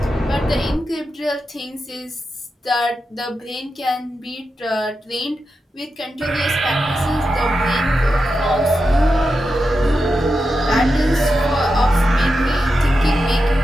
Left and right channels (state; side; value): normal; both; correlation 0.89